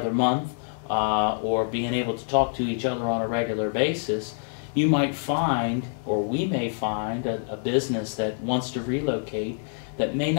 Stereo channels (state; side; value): silent; right; digital silence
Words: month or being able to talk to each other on a regular basis, you might find, or we may find, a business that wants to relocate that may